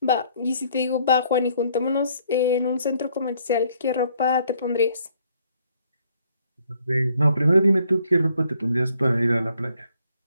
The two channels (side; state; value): both; inverted; correlation -0.66